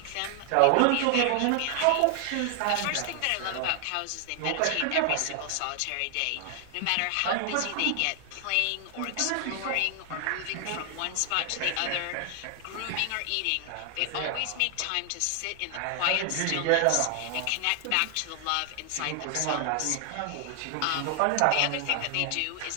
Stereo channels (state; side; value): different; both; correlation 0.00